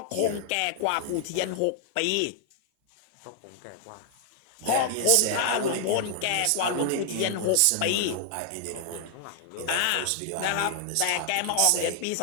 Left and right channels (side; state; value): both; different; correlation 0.00